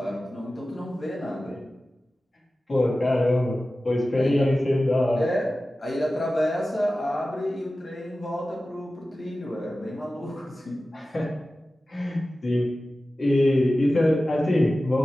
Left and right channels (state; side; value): normal; both; correlation 0.95